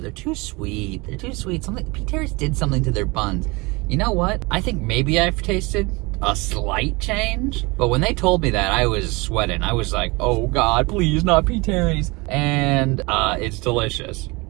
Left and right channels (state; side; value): quieter; left; 25.6 dB